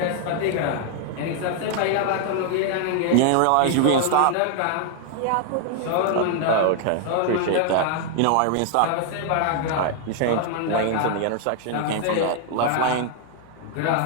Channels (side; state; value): both; different; correlation 0.00